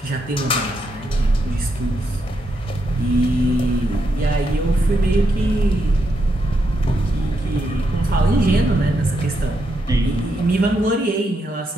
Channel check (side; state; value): both; normal; correlation 0.81